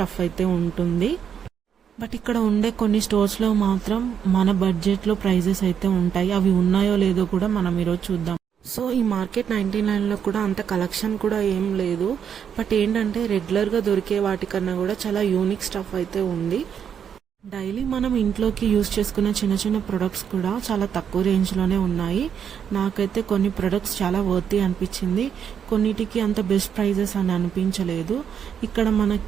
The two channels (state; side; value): quieter; left; 8.0 dB